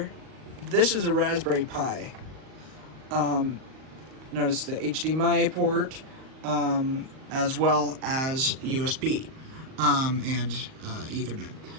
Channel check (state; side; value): late; left; 38 ms